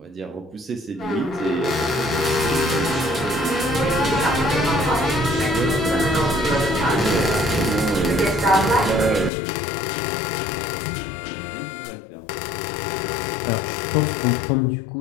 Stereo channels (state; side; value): drops out; right; at 9.3 s